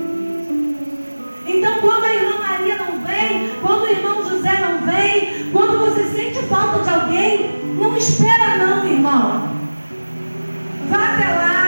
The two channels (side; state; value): both; inverted; correlation -1.00